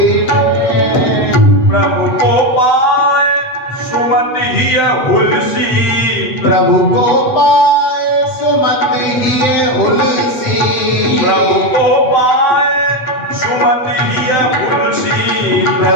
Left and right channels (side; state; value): right; late; 7.8 ms